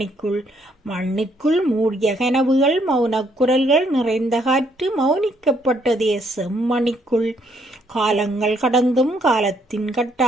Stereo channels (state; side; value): normal; both; correlation 0.70